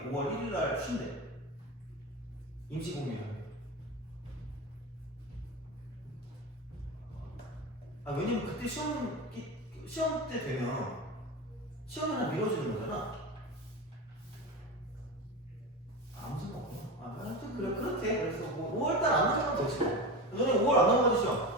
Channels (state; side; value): normal; both; correlation 0.23